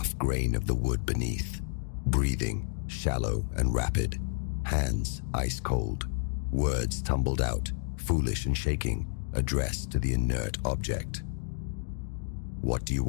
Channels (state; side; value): silent; right; digital silence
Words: grain of the wood beneath. Breathing, shallow and rapid. Hands ice cold. Words tumbled out, foolish and shaking, addressed to the inert object. "What do you